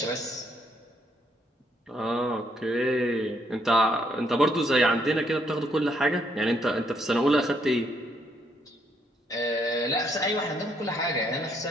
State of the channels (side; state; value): both; normal; correlation 0.71